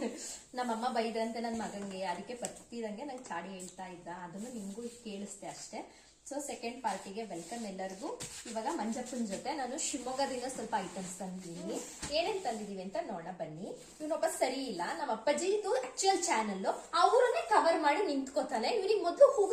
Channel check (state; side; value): identical; both; correlation 1.00